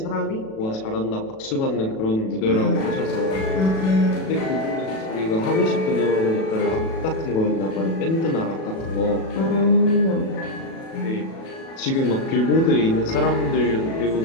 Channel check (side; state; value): right; late; 37 ms